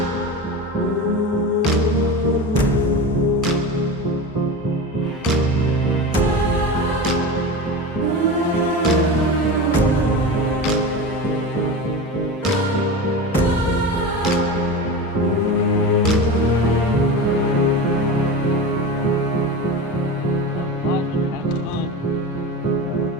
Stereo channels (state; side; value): normal; both; correlation 0.27